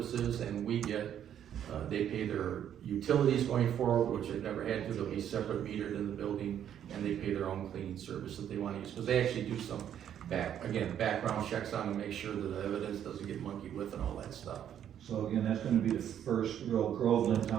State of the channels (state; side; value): quieter; left; 9.8 dB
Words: and we get, they pay their utilities going forward, which they've never had to, they'll be separate metered in the building, and they pay their own cleaning service that they wanna use, because they actually do some background checks on to make sure that the evidence doesn't get monkeyed with and all that stuff. So again, that's gonna be the first real Groveland